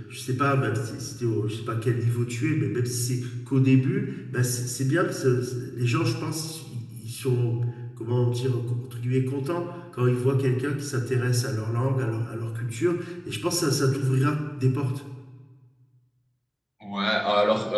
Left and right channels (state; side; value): identical; both; correlation 1.00